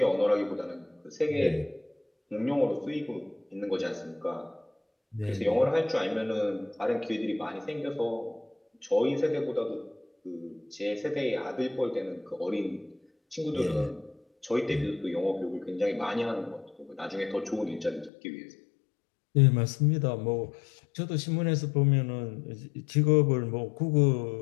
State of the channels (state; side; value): drops out; right; at 18.1 s